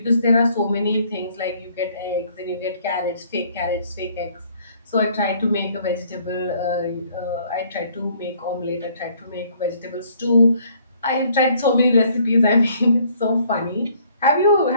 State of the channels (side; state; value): both; inverted; correlation -0.62